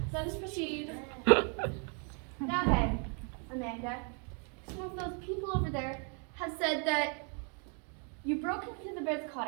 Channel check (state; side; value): quieter; left; 39.1 dB